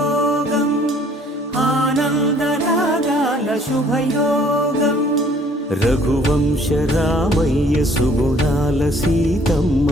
ఆనందరాగాల శుభయోగం రఘువంశ రామయ్య సుగుణాల సీతమ్మ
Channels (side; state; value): both; normal; correlation 0.58